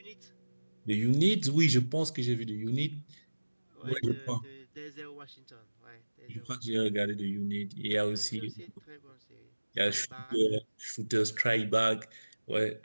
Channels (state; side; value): inverted; both; correlation -1.00